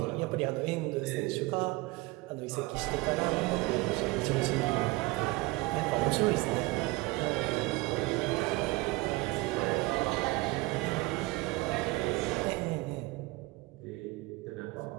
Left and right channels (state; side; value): quieter; left; 22.2 dB